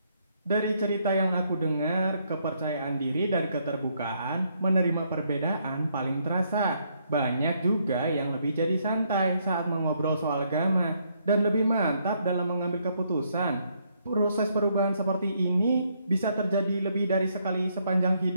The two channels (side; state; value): both; inverted; correlation -0.73